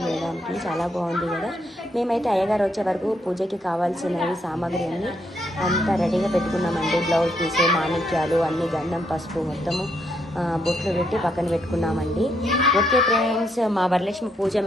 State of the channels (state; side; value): normal; both; correlation 0.75